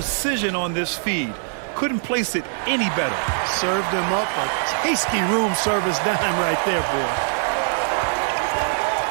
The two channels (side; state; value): left; silent; digital silence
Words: on this feed. Couldn't place it any better. Served him up a tasty room service dime right there, boy.